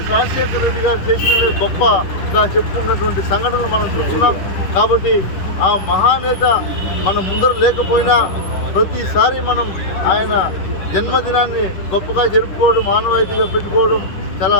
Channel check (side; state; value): right; late; 10 ms